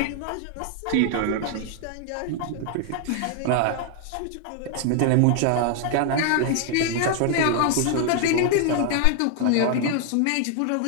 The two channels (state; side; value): different; both; correlation 0.00